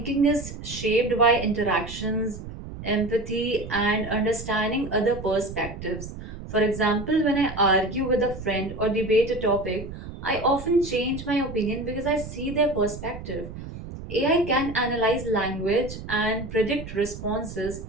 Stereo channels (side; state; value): right; noise; rumble, 11 dB below the sound